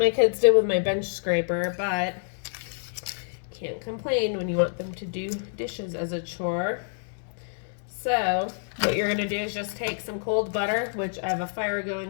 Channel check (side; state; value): right; silent; digital silence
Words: kids did with my bench scraper, but can't complain when you want them to do dishes as a chore. So what you're gonna do is just take some cold butter, which I have a fire